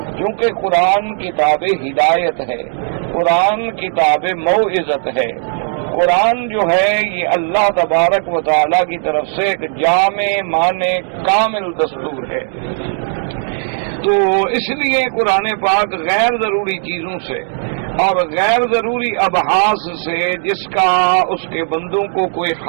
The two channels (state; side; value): silent; left; 69 dB below the other